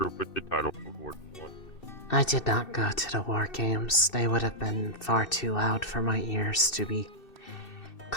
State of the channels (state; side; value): late; right; 2.6 ms